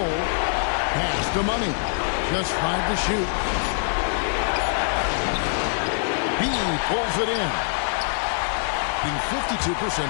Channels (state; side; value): silent; right; digital silence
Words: Pass to Money. Just 5 to shoot. B pulls it in. Being 52%